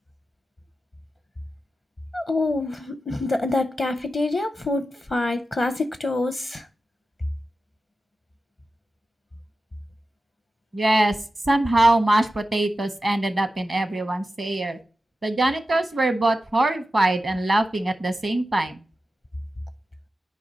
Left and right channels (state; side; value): normal; both; correlation 0.92